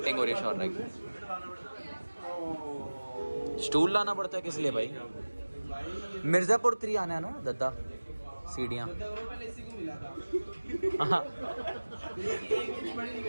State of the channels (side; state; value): both; inverted; correlation -1.00